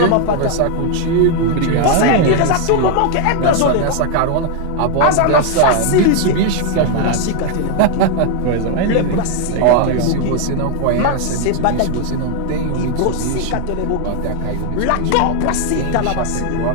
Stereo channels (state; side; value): different; both; correlation 0.00